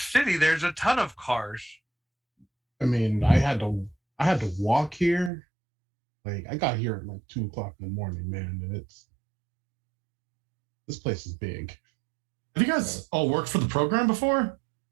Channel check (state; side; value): drops out; left; at 5.3 s